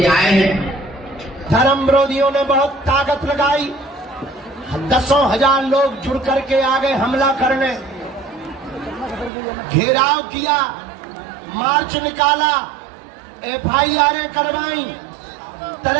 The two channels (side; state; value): left; drops out; at 9.3 s